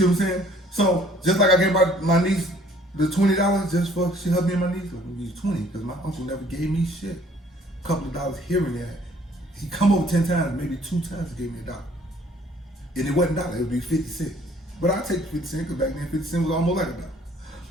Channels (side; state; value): both; normal; correlation 0.58